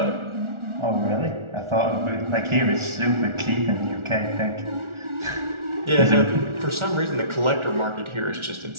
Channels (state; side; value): late; left; 1.4 ms